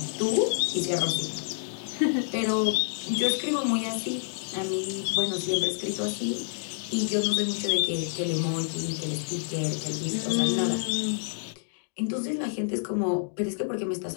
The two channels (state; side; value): silent; right; digital silence